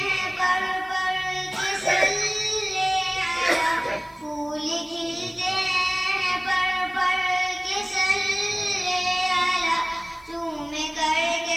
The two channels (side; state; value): left; noise; hiss, 30 dB below the sound